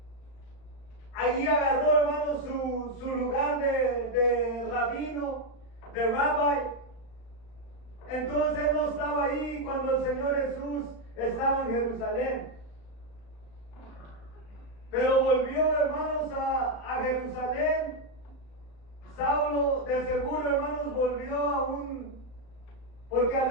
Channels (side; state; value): right; late; 36 ms